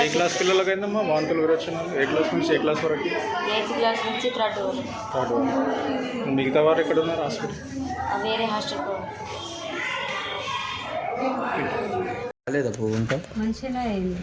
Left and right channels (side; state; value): both; identical; correlation 1.00